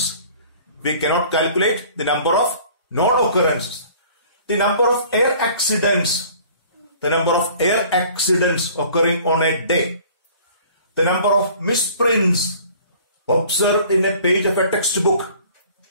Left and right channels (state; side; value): inverted; both; correlation -0.50